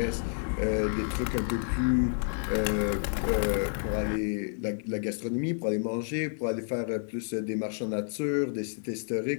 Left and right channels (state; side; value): silent; right; 58 dB below the other